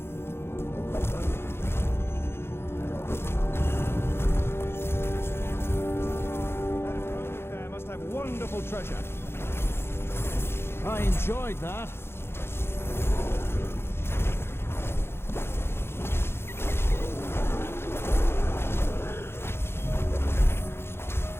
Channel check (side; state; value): right; late; 0.12 ms